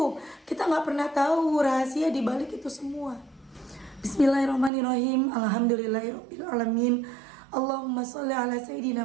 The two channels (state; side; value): drops out; left; at 4.7 s